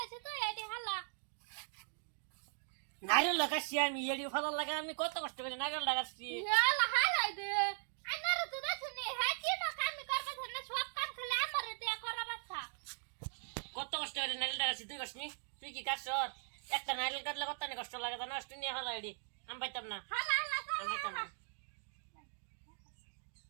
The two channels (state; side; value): silent; left; digital silence